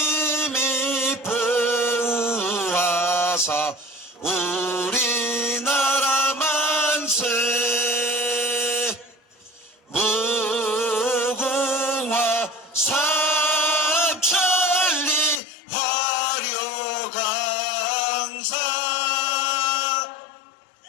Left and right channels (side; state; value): right; drops out; at 15.4 s